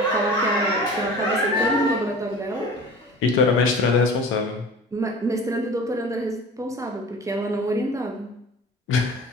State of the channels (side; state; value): both; normal; correlation 0.40